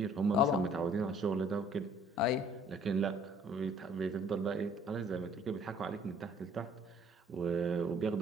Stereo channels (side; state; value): both; normal; correlation 0.57